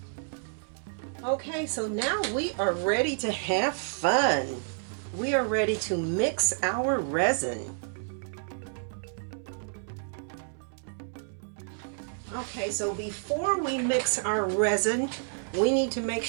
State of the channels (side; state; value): left; silent; 58 dB below the other